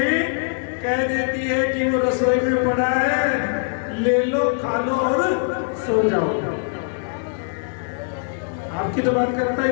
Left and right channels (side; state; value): right; silent; digital silence